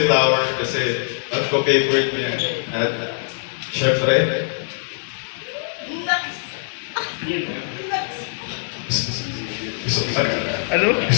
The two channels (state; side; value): silent; right; digital silence